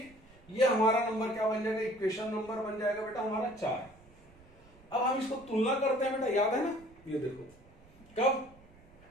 ये हमारा नंबर क्या बन जाएगा, इक्वेशन नंबर बन जाएगा बेटा हमारा 4। अब हम इसको तुलना करते हैं बेटा, याद है ना, ये देखो कब,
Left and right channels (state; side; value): noise; right; rumble, 25 dB below the sound